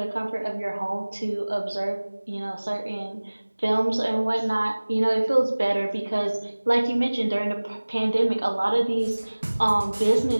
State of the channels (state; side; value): inverted; both; correlation -1.00